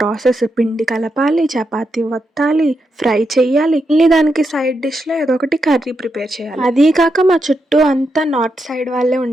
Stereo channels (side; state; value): both; normal; correlation 0.84